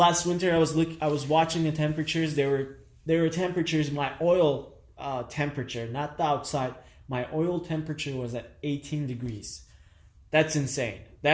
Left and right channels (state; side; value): identical; both; correlation 1.00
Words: winter, I was watching the temperatures. There were temperatures. My oil temperature, not the outside. My oil temperature was at 18 degrees. That's insane.